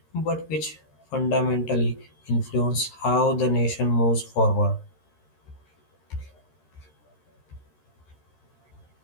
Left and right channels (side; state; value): right; late; 13 ms